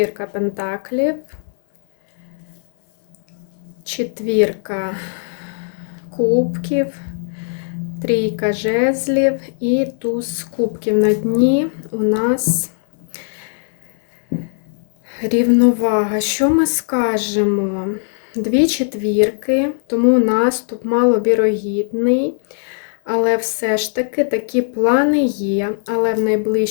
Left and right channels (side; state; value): right; silent; digital silence